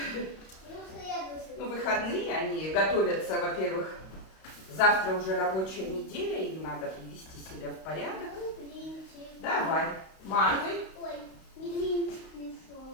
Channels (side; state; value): right; late; 32 ms